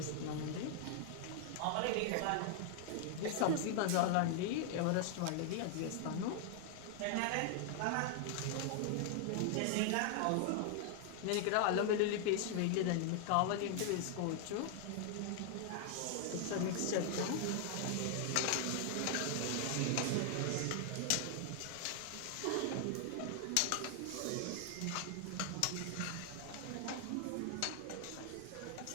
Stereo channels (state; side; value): different; both; correlation 0.00